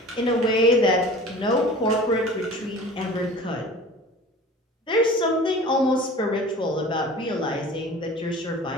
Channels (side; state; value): both; normal; correlation 0.41